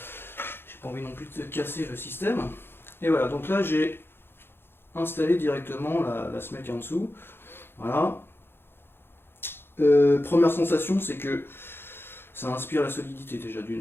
J'ai pas envie non plus de casser le système. Et voilà, donc là j'ai installé directement la semelle qui est en dessous. Voilà. Première sensation, c'est que ça inspire la solidité déjà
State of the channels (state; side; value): late; right; 0.11 ms